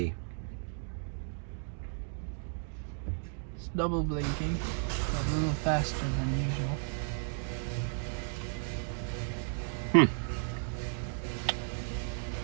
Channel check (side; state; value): left; silent; 55 dB below the other